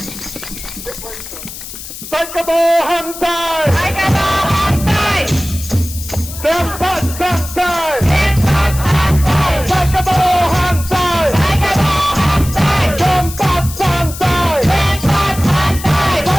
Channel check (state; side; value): noise; left; hiss, 12 dB below the sound